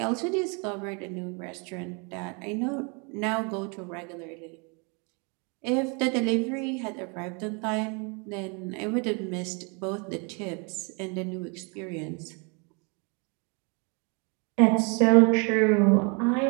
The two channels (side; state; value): left; quieter; 33.5 dB